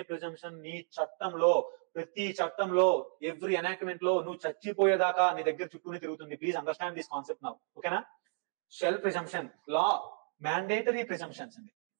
ప్రిజంప్షన్ నీ చట్టంలో, ప్రతి చట్టంలో, ఎవ్రీ ఎనాక్ట్మెంట్ లో నువ్వు చచ్చిపోయేదాకా నీ దగ్గర చుట్టూనే తిరుగుతుంది. Please understand this concept now, ఓకేనా? Shall presumption, law mandatory presumptions అండి,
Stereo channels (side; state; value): left; silent; 56 dB below the other